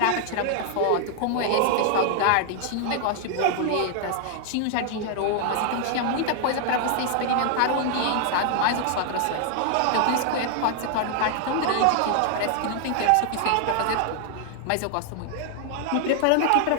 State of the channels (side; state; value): both; different; correlation 0.00